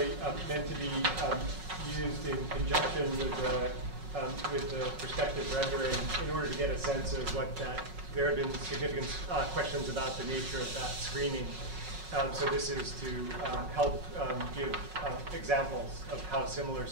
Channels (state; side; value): late; left; 5.4 ms